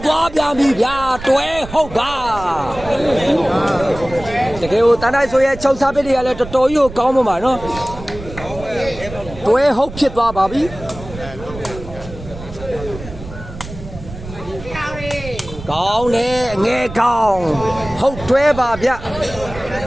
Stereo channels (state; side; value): noise; right; rumble, 13 dB below the sound